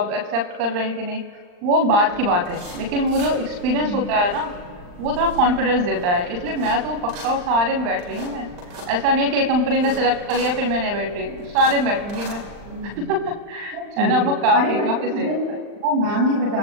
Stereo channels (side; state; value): left; late; 39 ms